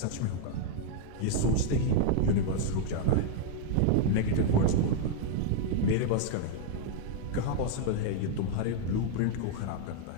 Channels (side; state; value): both; different; correlation 0.00